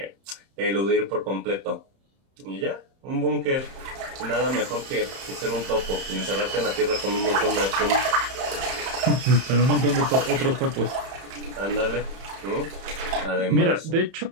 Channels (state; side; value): late; left; 31 ms